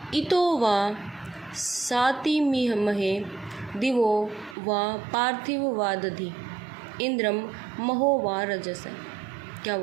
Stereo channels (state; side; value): drops out; left; at 4.5 s